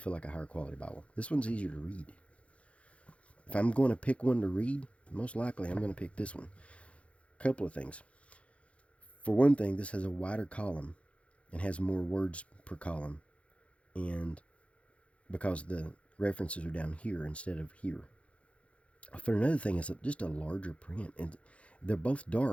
like a higher quality Bible. This one's easier to read. If I'm going to pick one to read, most likely I'm going to pick this one. A couple of things. For one thing, this has a wider column and has more words per column, and because the references are down here instead of here. For another thing, it's just a larger print, and they're both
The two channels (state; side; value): late; right; 0.062 ms